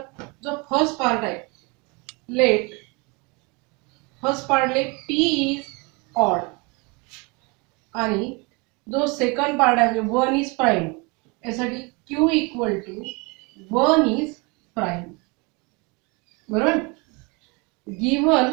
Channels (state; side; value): quieter; left; 29.1 dB